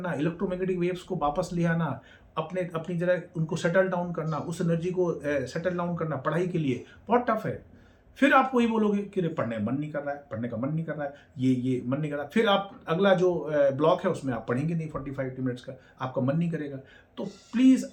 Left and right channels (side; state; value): both; identical; correlation 1.00